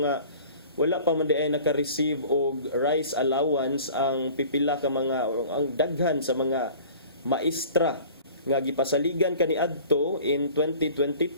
nga wala pa man di ay naka-receive og rice allowance ang pipila ka mga ang daghan sa mga maestra nga gipasaligan kaniadto in 2022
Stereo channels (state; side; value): inverted; both; correlation -0.45